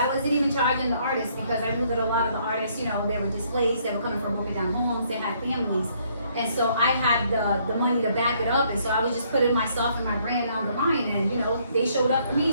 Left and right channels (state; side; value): inverted; both; correlation -0.67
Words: wasn't even charging the artists because I knew that a lot of the artists, they were displaced. They were coming from broken down homes. They had families. And so I had the money to back it up. And so I was just putting myself and my brand on the line. And, they showed up for me.